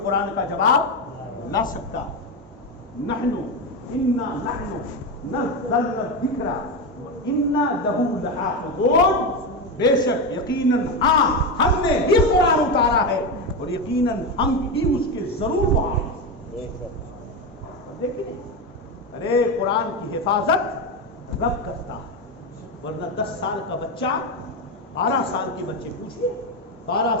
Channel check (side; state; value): both; normal; correlation 0.13